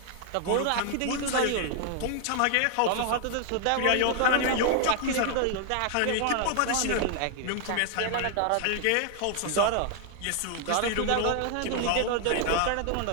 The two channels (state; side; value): different; both; correlation 0.00